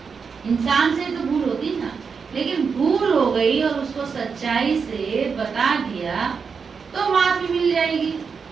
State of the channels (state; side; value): quieter; left; 5.7 dB